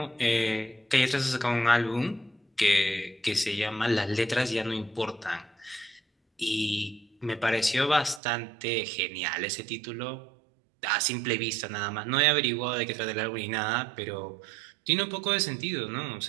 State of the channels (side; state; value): left; drops out; at 8.2 s